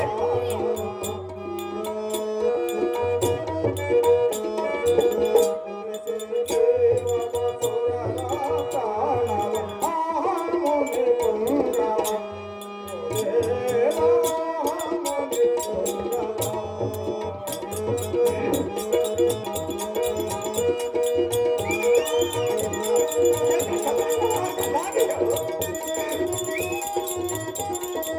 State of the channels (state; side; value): identical; both; correlation 1.00